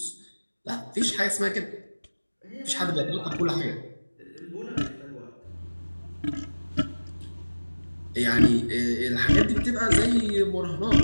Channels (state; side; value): inverted; both; correlation -1.00